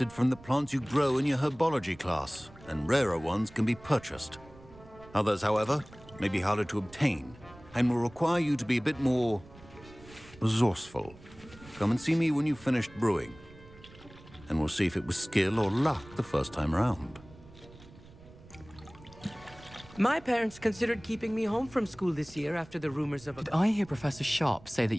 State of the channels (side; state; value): right; noise; rumble, 21 dB below the sound